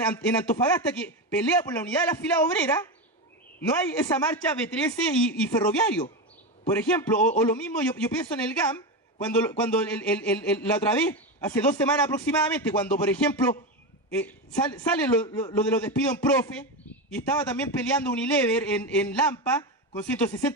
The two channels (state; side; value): normal; both; correlation 0.16